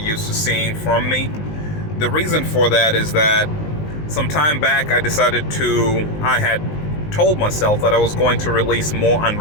to seeing from me. The reason for that is that some time back I had told myself that I was going to release more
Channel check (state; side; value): late; right; 19 ms